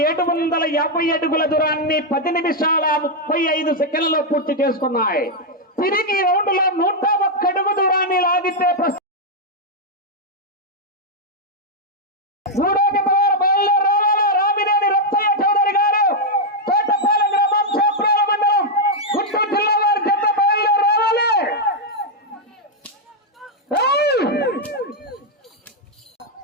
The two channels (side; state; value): both; normal; correlation -0.02